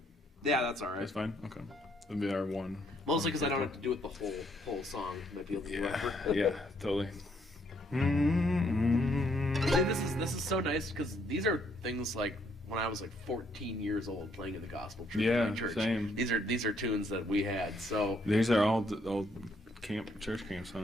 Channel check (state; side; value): normal; both; correlation 0.70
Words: Yeah, that's all right. That's fine. Okay, that'd be our one. Mostly because I don't have to do it the whole song. Might be a little rougher. Yeah, totally. This is so nice because these are things like when I was like 14 years old playing in the gospel church. Yeah, same. These are tunes that we had. So these are all old church camp